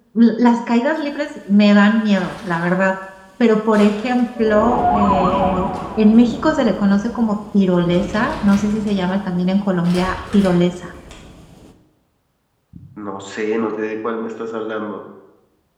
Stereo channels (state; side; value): identical; both; correlation 1.00